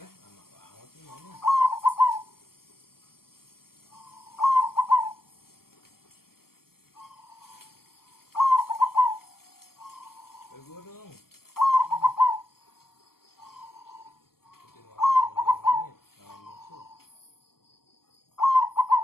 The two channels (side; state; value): right; late; 0.93 ms